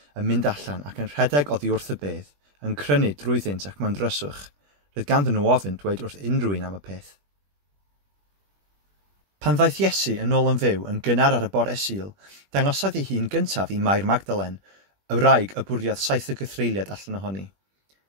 yn mynd allan ac yn rhedeg oddi wrth y bedd, yn crynu drwyddynt ac mewn dryswch. Roedd ganddyn nhw ofyn dweud wrth unrhyw un am y peth. Pan ddaeth Iesu yn ôl yn fyw yn gynnar ar y bore Sul, dangosodd ei hun gyntaf i Mair Magdalen, Y wraig y bwriad 7 o gythreiliad allan ohoni.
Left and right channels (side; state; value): left; late; 21 ms